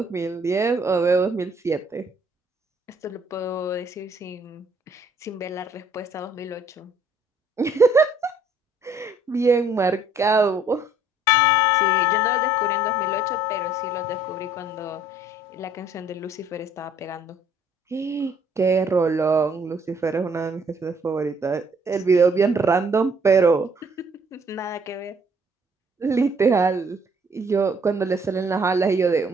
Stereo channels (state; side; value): normal; both; correlation 0.61